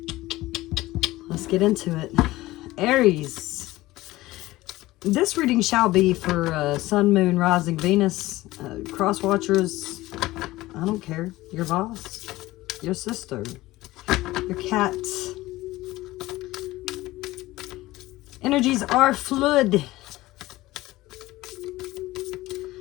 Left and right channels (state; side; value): quieter; right; 18.0 dB